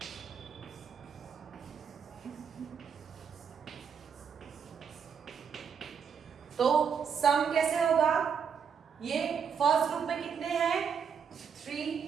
तो सम कैसे होगा? ये फर्स्ट ग्रुप में कितने हैं? 3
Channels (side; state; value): left; quieter; 6.9 dB